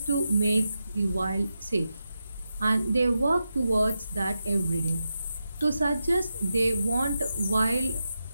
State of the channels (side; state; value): both; inverted; correlation -0.89